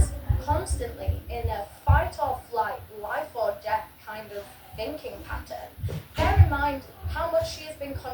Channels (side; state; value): both; identical; correlation 1.00